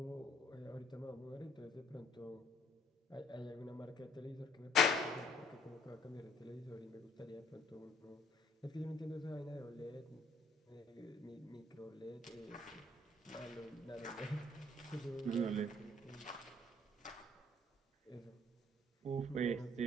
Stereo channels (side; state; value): both; normal; correlation 0.62